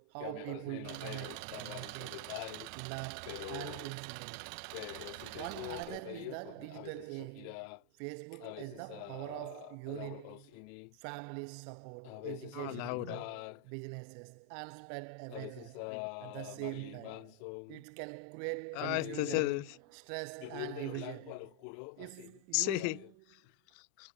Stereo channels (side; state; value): both; different; correlation 0.00